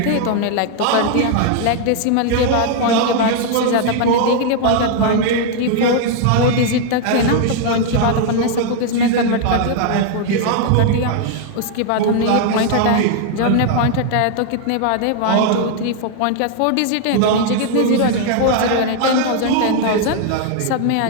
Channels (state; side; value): different; both; correlation 0.00